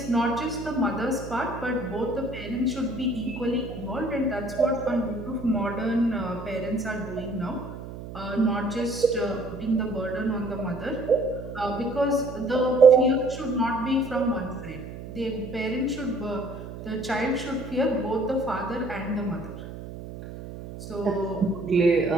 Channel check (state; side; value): noise; right; hum, 11 dB below the sound